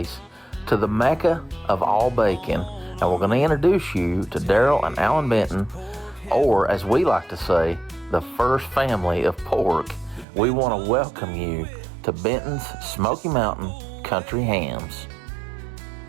to the Mecca of all bacon. And we're going to introduce you to Daryl and Alan Benton, or as we like to say, the first family of pork. We want to welcome you to Benton's Smoky Mountain Country Hams.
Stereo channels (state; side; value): drops out; left; at 10.2 s